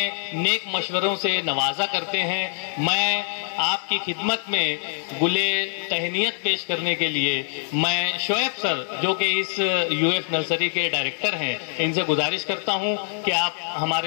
نیک مشوروں سے نوازا کرتے ہیں۔ میں آپ کی خدمت میں گلے تہنیت پیش کرنے کے لیے میں شعیب سر جو کہ اس UF نرسری کے ڈائریکٹر ہیں، ان سے گزارش کرتا ہوں کہ آپ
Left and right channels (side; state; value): right; silent; digital silence